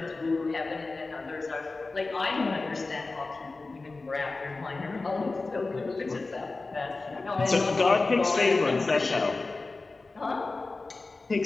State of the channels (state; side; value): quieter; right; 3.6 dB